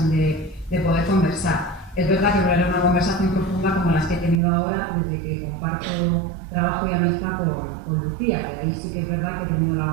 de poder conversar. Es verdad que no era una conversación profunda como las que he tenido ahora desde que comparto trabajo y amistad con Lucía, que ahí sí que es verdad que he tenido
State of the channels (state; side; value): drops out; left; at 4.4 s